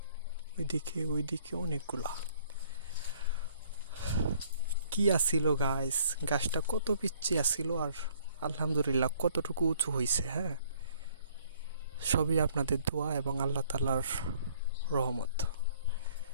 ওইদিকে অনেকগুলা। কি আসিল গাইস, গাছটা কত পিচ্ছি আসিল আর আলহামদুলিল্লাহ কতটুকু উঁচু হয়েছে। সবই আপনাদের দোয়া এবং আল্লাহ তাআলার রহমত।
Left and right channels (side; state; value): both; inverted; correlation -0.60